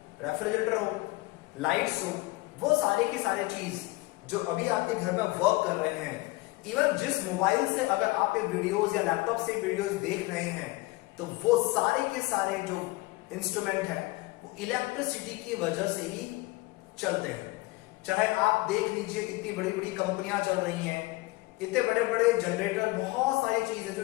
रेफ्रिजरेटर हो, लाइट्स हो, वो सारे की सारे चीज जो अभी आपके घर में वर्क कर रहे हैं, इवन जिस मोबाइल से अगर आप ये वीडियोस या लैपटॉप से वीडियोस देख रहे हैं, तो वो सारे के सारे जो इंस्ट्रूमेंट हैं वो इलेक्ट्रिसिटी की वजह से ही चलते हैं। चाहे आप देख लीजिए, इतनी बड़ी बड़ी कंपनियां चल रही हैं, इतने बड़े बड़े जनरेटर, बहुत सारी चीजें जो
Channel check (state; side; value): quieter; right; 21.6 dB